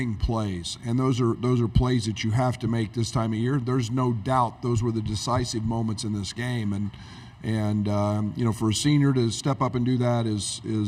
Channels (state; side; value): identical; both; correlation 1.00